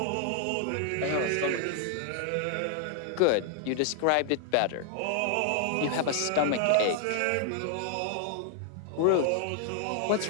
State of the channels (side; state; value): both; different; correlation 0.00